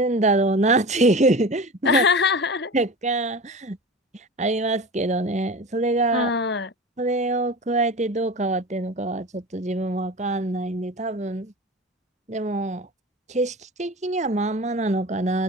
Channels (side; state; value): both; normal; correlation 0.32